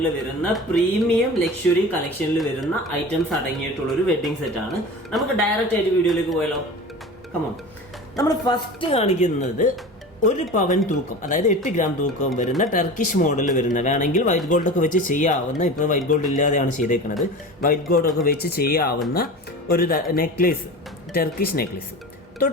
വരുന്ന പ്രീമിയം ലക്ഷറി കളക്ഷനിൽ വരുന്ന ഐറ്റംസ് അടങ്ങിയിട്ടുള്ള ഒരു വെഡിങ് സെറ്റ് ആണ്. നമുക്ക് ഡയറക്റ്റ് ആയിട്ട് വീഡിയോയിലേക്ക് പോയാലോ? കമോൺ. നമ്മൾ ഫസ്റ്റ് കാണിക്കുന്നത് 1 പവൻ തൂക്കം, അതായത് 8 ഗ്രാം തൂക്കം വരുന്ന ടർക്കിഷ് മോഡൽ വരുന്ന, വേണമെങ്കിൽ വൈറ്റ് ഗോൾഡ് ഒക്കെ വെച്ച് ചെയ്യാവുന്ന, ഇപ്പോൾ വൈറ്റ് ഗോൾഡ് ഇല്ലാതെയാണ് ചെയ്തേക്കുന്നത്, വൈറ്റ് ഗോൾഡ് ഒക്കെ വെച്ച് ചെയ്യാവുന്ന ഒരു നെക്ലേസ്, ടർക്കിഷ് നെക്ലേസ്.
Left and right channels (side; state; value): both; normal; correlation 0.33